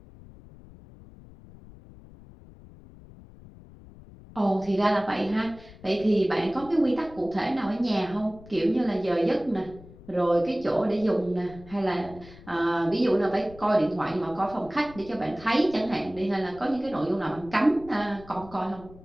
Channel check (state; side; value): noise; left; rumble, 20 dB below the sound